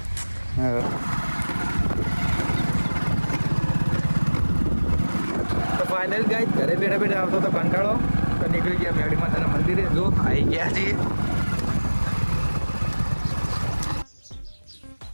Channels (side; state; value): both; inverted; correlation -1.00